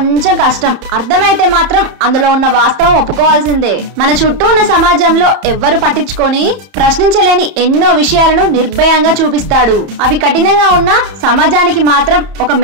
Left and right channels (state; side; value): late; left; 31 ms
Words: కష్టం. అర్థమైతే మాత్రం అందులో ఉన్న వాస్తవం ఒప్పుకోవాల్సిందే. మన చుట్టూ ఉన్న సమాజంలో ఎవ్వరు పట్టించుకొని ప్రశ్నించలేని ఎన్నో విషయాలను నిర్భయంగా చూపిస్తాడు. అవి కఠినంగా ఉన్న సమాజానికి మాత్రం ఒక